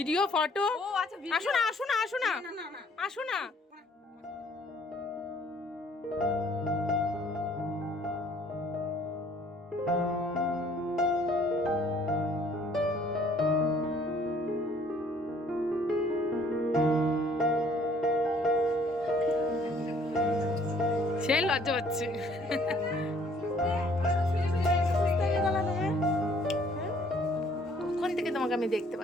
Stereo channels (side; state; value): both; normal; correlation 0.59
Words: ফটো ও আচ্ছা আসো না আসো না আসো না আসো না সে লজ্জা হচ্ছে কোন থেকে তোমাকে আমি দেখতে